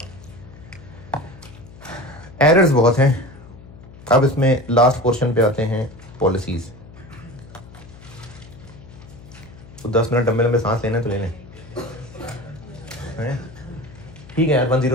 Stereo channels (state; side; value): noise; left; hum, 19 dB below the sound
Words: एरर्स बहुत हैं। अब इसमें लास्ट पोर्शन पे आते हैं, पॉलिसीज। तो 10 मिनट लंबे लंबे सांस लेना है तो ले लें, ठीक है यार।